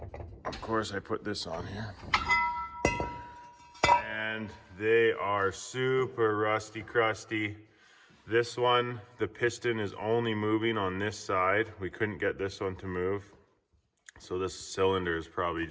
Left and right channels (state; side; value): identical; both; correlation 1.00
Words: Of course, I put this on here. And they are super rusty crusty. This one, the piston is only moving on this side. We couldn't get this one to move. So this cylinder is probably